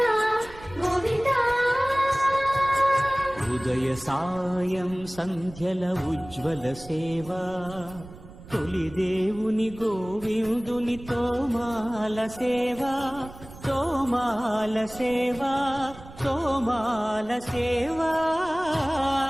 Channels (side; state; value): right; noise; rumble, 18 dB below the sound